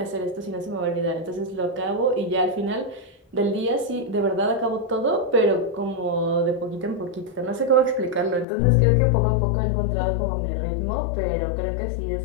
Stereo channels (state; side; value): drops out; right; at 8.5 s